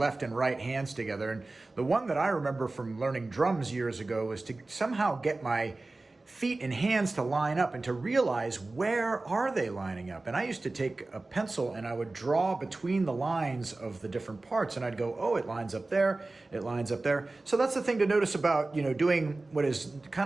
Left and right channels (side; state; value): left; quieter; 3.2 dB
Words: and right hands together? And the one that I remember from learning drums years ago was to somehow get my feet and hands to line up and to realize where are they lining up. And I used to take a pencil and I would draw between the lines of the different parts and I'd go, oh, it lines up there, it lines up there. So that's the thing to notice about, doing what is